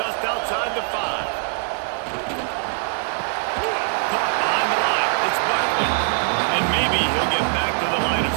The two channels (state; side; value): silent; left; 64 dB below the other